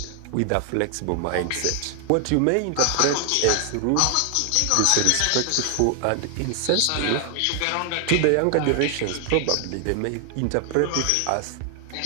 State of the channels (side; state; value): both; different; correlation 0.00